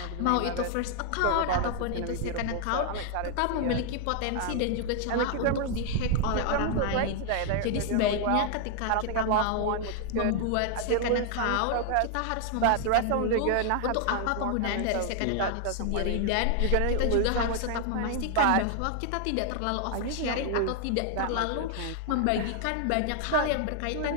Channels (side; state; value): both; different; correlation 0.00